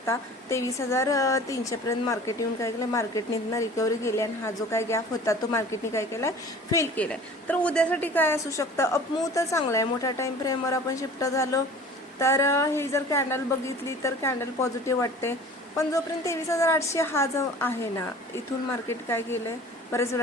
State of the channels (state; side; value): normal; both; correlation 0.44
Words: 23,300 पर्यंत मार्केट येऊन काय केलं, मार्केटने रिकव्हरी केली आणि हा जो काय गॅप होता तो मार्केटने काय केलाय, फेल केलाय. तर उद्यासाठी काय असू शकतं, अपमूव्ह तर चांगला आहे. मोठ्या टाइम फ्रेमवर आपण शिफ्ट झालो तर ही जर कॅन्डल बघितली तर कॅन्डल पॉझिटिव्ह वाटते. पण जोपर्यंत 23,800 हा जो आहे ना, इथून मार्केट काय केलंय, बरेच